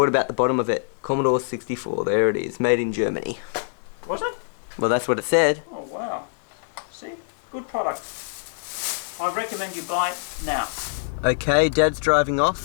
about the bottom of it? Commodore 64, there it is, made in Germany. Was it? Well, that's what it said. Oh, wow. See? Good product. I recommend you buy it now. Okay, Dad's driving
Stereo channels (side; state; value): right; silent; digital silence